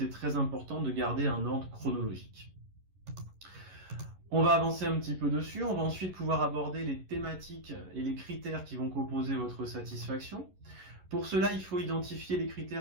très important de garder un ordre chronologique. On va avancer un petit peu dessus, on va ensuite pouvoir aborder les thématiques et les critères qui vont composer votre satisfaction. Pour cela, il faut identifier les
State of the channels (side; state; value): left; late; 11 ms